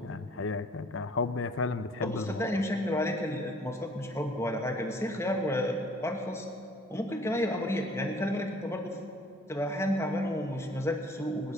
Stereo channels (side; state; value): both; normal; correlation 0.56